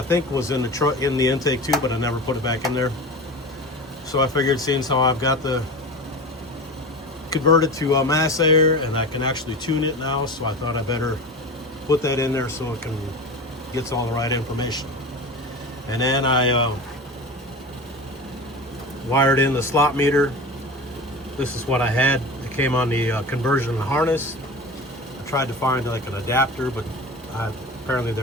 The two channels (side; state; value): both; normal; correlation 0.30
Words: think, was in the intake too, but I never put it back in there. So I figured, seeing how I've got the converted to mass air, and I can actually tune it now, so I thought I better put that in there so it gets all the right information. And then I wired in the slot meter. This is what I had. It came on the conversion harness. I tried to find like an adapter, but apparently